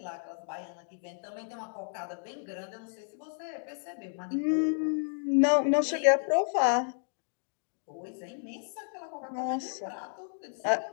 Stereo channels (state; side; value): silent; right; digital silence